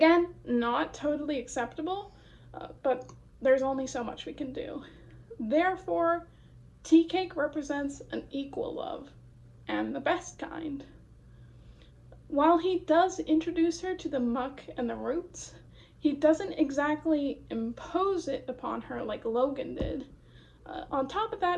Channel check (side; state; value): both; identical; correlation 1.00